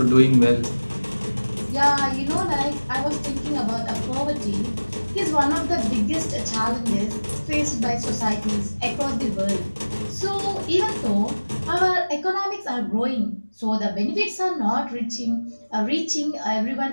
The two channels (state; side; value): inverted; both; correlation -1.00